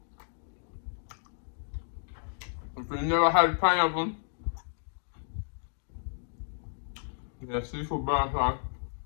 If you never had pineapple, yeah, seafood brown sauce,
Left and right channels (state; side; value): silent; right; digital silence